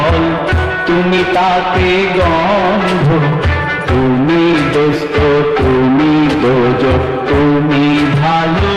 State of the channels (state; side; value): identical; both; correlation 1.00